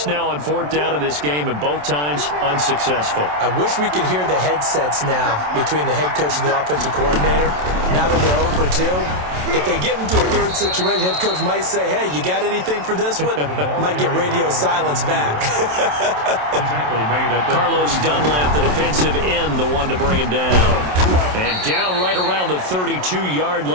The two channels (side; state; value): left; late; 27 ms